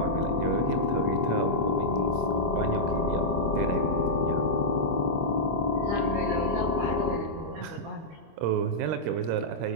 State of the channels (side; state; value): left; late; 25 ms